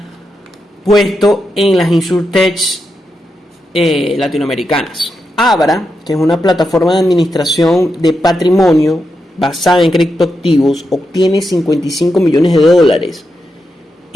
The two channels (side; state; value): both; normal; correlation 0.86